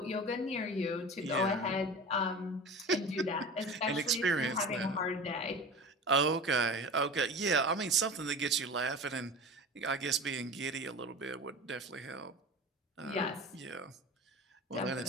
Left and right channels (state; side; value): normal; both; correlation 0.34